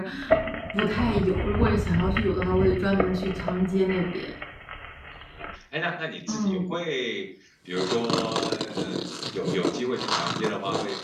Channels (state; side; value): identical; both; correlation 1.00